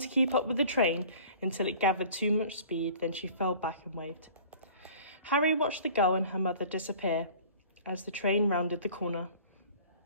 keep up with the train until it gathered too much speed, then she fell back and waved. Harry watched the girl and her mother disappear as the train rounded the corner.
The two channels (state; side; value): inverted; both; correlation -0.46